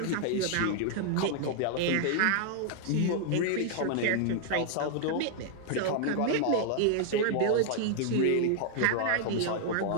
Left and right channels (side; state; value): both; different; correlation -0.01